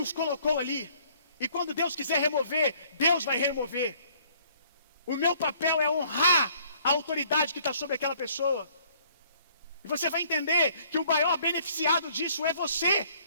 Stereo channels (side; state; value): both; inverted; correlation -0.60